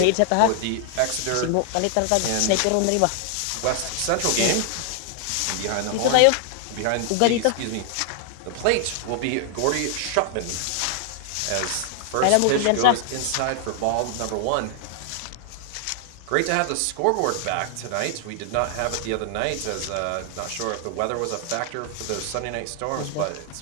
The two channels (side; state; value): both; different; correlation 0.00